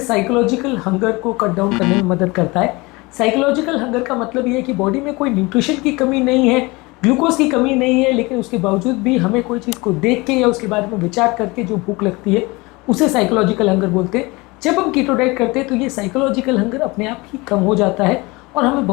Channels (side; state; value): right; quieter; 24.1 dB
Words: हंगर को कट डाउन करने में मदद करता है। साइकोलॉजिकल हंगर का मतलब ये है कि बॉडी में कोई न्यूट्रिशन की कमी नहीं है, ग्लूकोज की कमी नहीं है, लेकिन उसके बावजूद भी हमें कोई चीज़ को देख के या उसके बारे में विचार करके जो भूख लगती है उसे साइकोलॉजिकल हंगर बोलते हैं। जब हम कीटो डाइट करते हैं तो ये साइकोलॉजिकल हंगर अपने आप ही कम हो जाता है और हमें